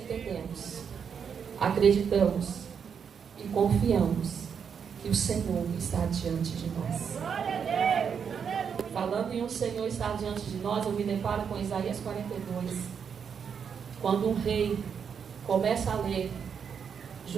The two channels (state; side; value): quieter; left; 7.0 dB